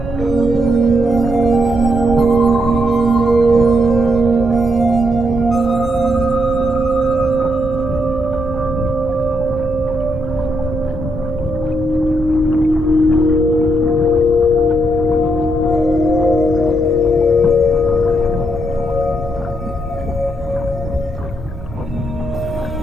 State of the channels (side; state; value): both; normal; correlation 0.78